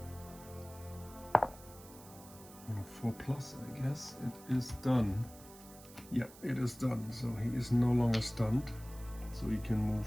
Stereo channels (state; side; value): noise; right; hiss, 19 dB below the sound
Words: On a 4+, I guess it is done. Yeah, it is done. So he is no longer stunned. So he can